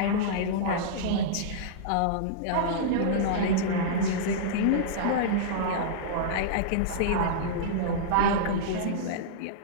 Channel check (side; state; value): both; different; correlation -0.03